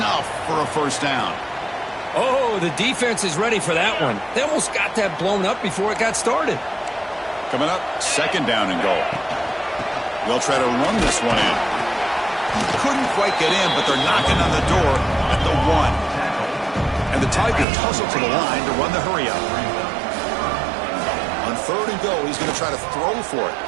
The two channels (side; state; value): left; drops out; at 17.7 s